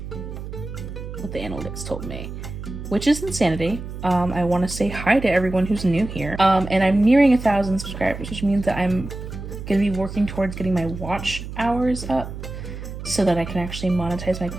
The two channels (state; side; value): noise; right; hum, 9 dB below the sound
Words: What the analytics told me, which is insanity. I want to say hi to everyone who's new here. And I'm nearing 1,000 subscribers, which means that I'm gonna be working towards getting my watch hours up so that I can actually monetize my